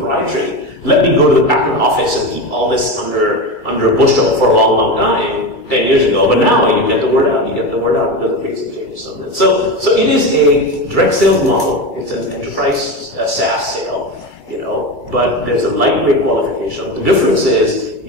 Let me go to the patent office and keep all this under a bushel for a long, long time, 10 years ago. But now you get the word out. You get the word out because of big changes on that. So it is a direct sales model. It's an enterprise SaaS sale, but there's a lightweight qualification. The difference is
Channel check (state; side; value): late; right; 2.3 ms